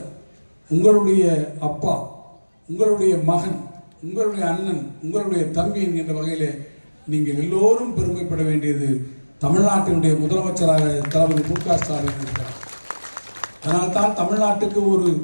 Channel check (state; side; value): inverted; both; correlation -1.00